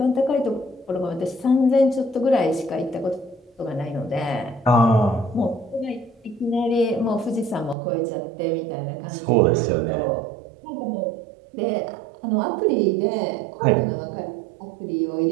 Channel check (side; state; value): left; drops out; at 7.8 s